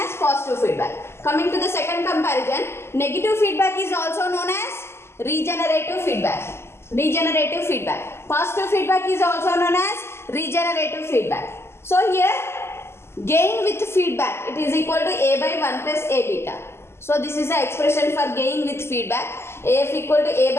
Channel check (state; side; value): late; right; 0.12 ms